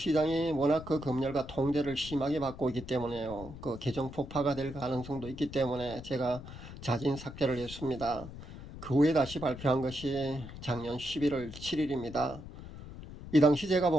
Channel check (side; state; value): left; noise; rumble, 13 dB below the sound